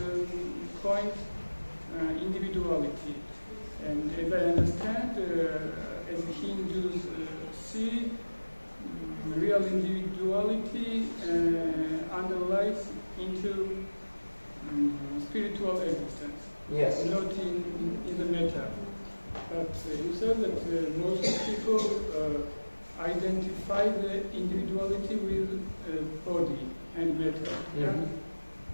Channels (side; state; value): both; inverted; correlation -1.00